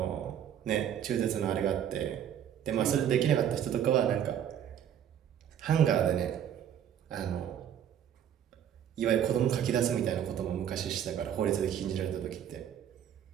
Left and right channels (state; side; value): quieter; left; 9.7 dB